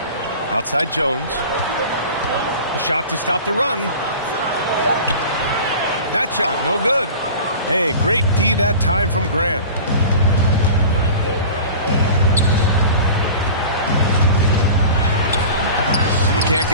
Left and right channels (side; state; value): both; inverted; correlation -0.37